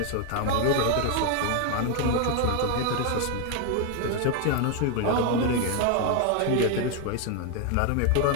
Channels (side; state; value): both; different; correlation 0.01